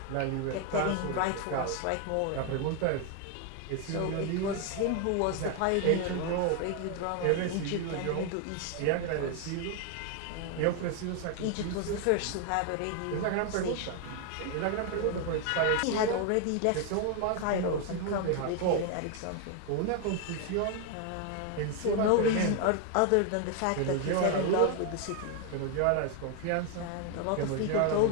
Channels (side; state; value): both; different; correlation 0.01